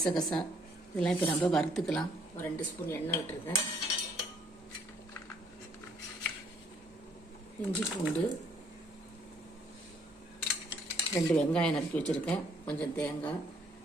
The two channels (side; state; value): both; normal; correlation 0.65